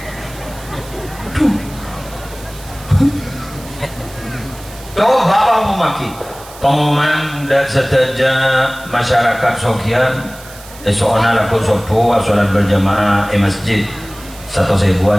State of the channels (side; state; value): right; noise; hiss, 19 dB below the sound